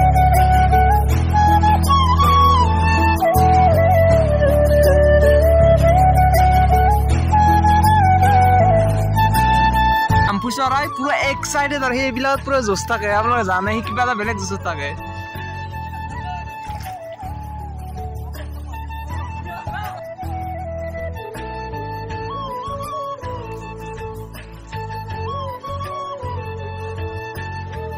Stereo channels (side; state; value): both; identical; correlation 1.00